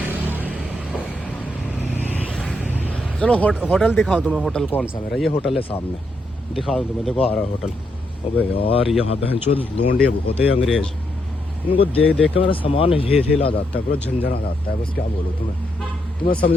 चलो होटल दिखाऊं तुम्हें। होटल कौन सा मेरा? ये होटल है सामने, दिखा दूँ तुम्हें। देखो आ रहा है होटल। अबे यार यहाँ बहनचोद लोंडे बहुत है अंग्रेज, इनको देख देख के मेरा सामान हिला जाता है, पूरा झंझना जाता है। बस क्या बोलूँ तुम्हें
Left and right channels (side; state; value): both; normal; correlation 0.79